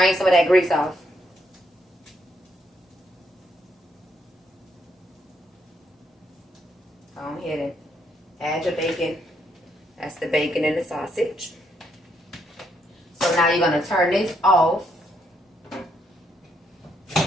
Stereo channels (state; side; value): normal; both; correlation 0.75